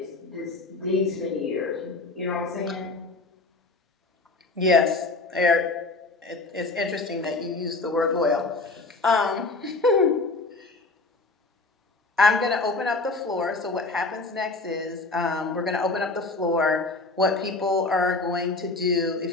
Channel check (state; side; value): quieter; right; 3.4 dB